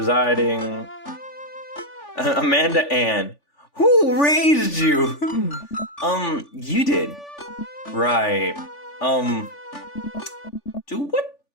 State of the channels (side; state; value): right; late; 3.5 ms